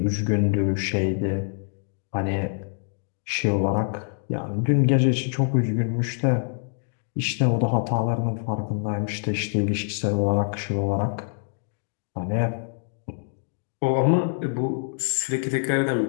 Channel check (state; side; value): silent; right; digital silence